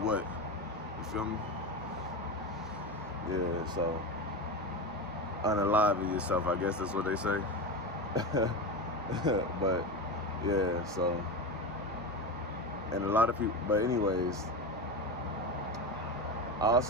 You feel me? Yeah, so unalive yourself, I guess that's what they say. But yeah, so, and a lot of people, but anyways,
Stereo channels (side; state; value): both; normal; correlation 0.20